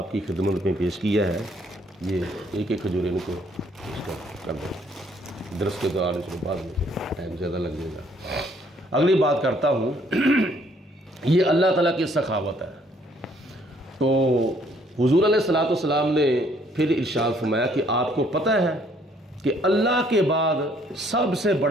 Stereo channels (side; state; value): both; normal; correlation 0.65